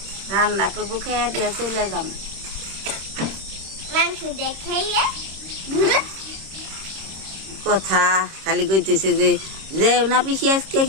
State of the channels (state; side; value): late; left; 26 ms